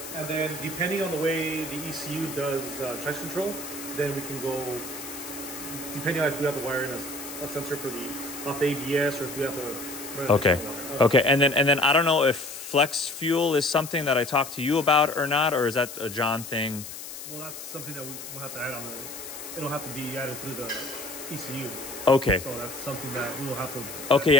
And then depending on the way the ECU does traction control, then we can go, depending on if we have to wire in a sensor for off the ABS or if we have to... Okay. Okay. And then I don't know if flex fuel is something that I talked to you about or not, or is that a John thing? Well, that's something that we'll have to add on it'll have to be added through the ECU. Okay. So that's something that we will have to... Okay,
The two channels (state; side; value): noise; left; hiss, 11 dB below the sound